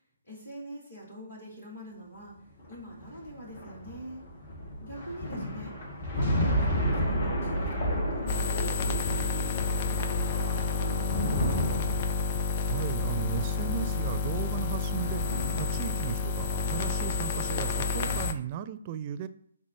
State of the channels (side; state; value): both; inverted; correlation -0.41